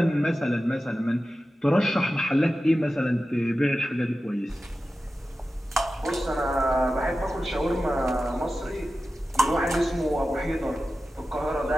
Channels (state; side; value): normal; both; correlation 0.94